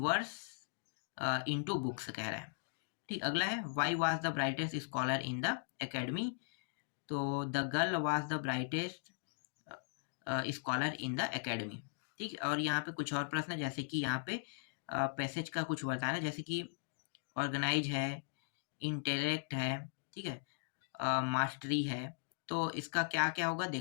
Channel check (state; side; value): silent; right; digital silence